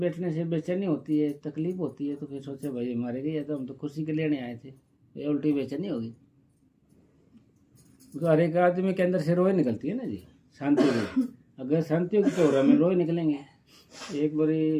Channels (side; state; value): both; identical; correlation 1.00